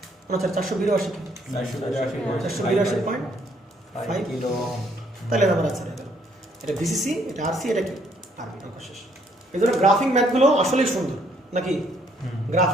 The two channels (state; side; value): normal; both; correlation 0.67